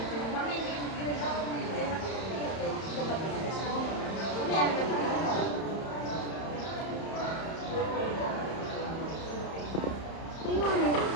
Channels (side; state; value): right; late; 31 ms